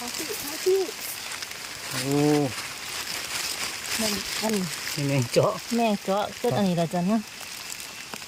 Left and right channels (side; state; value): both; identical; correlation 1.00